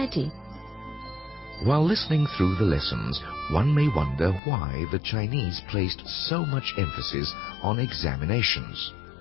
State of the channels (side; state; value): right; drops out; at 4.4 s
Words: While listening through the lessons, one may wonder why the Chinese placed so much emphasis on examinations.